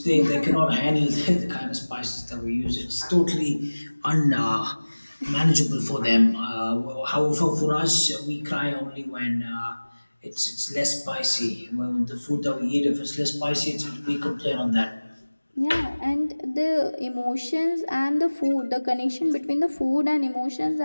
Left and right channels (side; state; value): both; inverted; correlation -1.00